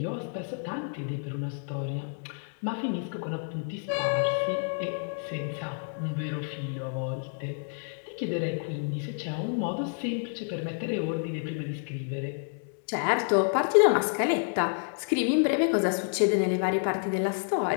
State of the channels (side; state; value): right; silent; 58 dB below the other